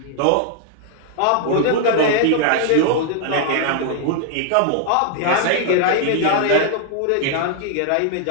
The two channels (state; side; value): different; both; correlation 0.00